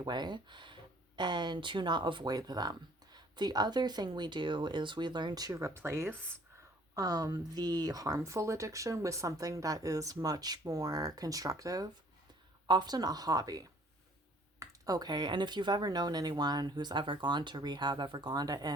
way and to not avoid them. The other thing we do is we learn to replace the harmful addiction with something that is much more constructive, often a hobby. Okay, and if you've ever known anyone who's ever gone to rehab, ever gone to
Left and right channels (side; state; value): both; normal; correlation 0.57